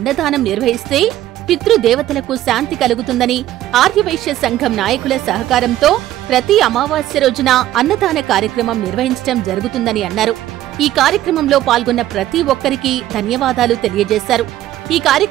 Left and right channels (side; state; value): left; quieter; 13.7 dB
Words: నిర్వహిస్తే పితృదేవతలకు శాంతి కలుగుతుందని, ఆర్యవైశ్య సంఘం నాయకుల సహకారంతో ప్రతి అమావాస్య రోజున అన్నదాన కార్యక్రమం నిర్వహించడం జరుగుతుందని అన్నారు. ఈ కార్యక్రమంలో పాల్గొన్న ప్రతి ఒక్కరికి ధన్యవాదాలు తెలియజేశారు. ఈ